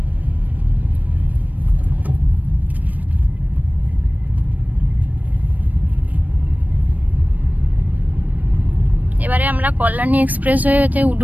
এবারে আমরা কল্যাণী এক্সপ্রেসওয়েতে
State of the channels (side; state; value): left; late; 0.080 ms